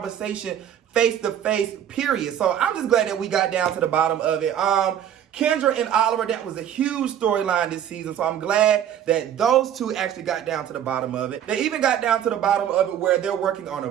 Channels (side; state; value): left; quieter; 9.9 dB